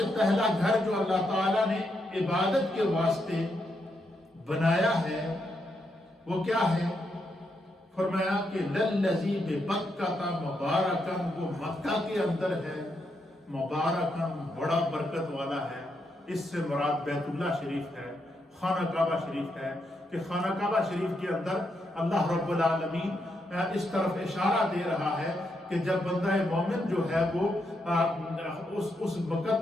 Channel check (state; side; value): normal; both; correlation 0.81